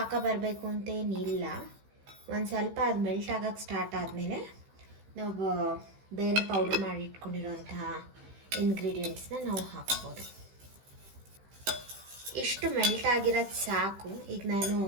ಬರಬೇಕು ಅಂತೇನಿಲ್ಲ. ಒಂದು ಸ್ವಲ್ಪ ಅದು ಮೆಲ್ಟ್ ಆಗೋಕ್ಕೆ ಸ್ಟಾರ್ಟ್ ಆದಮೇಲೆ ನಾವು ಬೇರೆ ಪೌಡ್ರ್ ಮಾಡಿ ಇಟ್ಕೊಂಡಿರೋಂತಹ ಇಂಗ್ರೀಡಿಯೆಂಟ್ಸ್ನ ನಾವು ಹಾಕ್ಬೋದು. ಇಷ್ಟು ಮೆಲ್ಟ್ ಆಗಿರೋದು ಸಾಕು. ಈಗ ನಾನು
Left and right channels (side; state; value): left; late; 15 ms